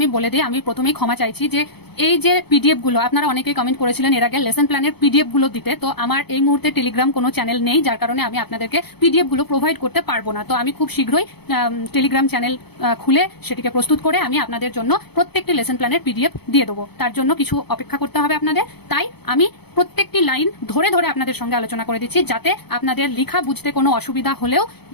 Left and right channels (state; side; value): late; right; 0.98 ms